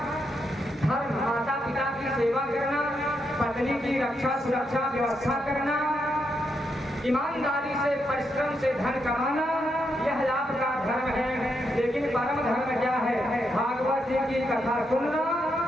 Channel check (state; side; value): normal; both; correlation 0.81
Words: धर्म, माता पिता की सेवा करना, पत्नी की रक्षा सुरक्षा व्यवस्था करना, ईमानदारी से परिश्रम से धन कमाना, यह आपका धर्म है। लेकिन परम धर्म क्या है? भागवत जी की कथा सुनना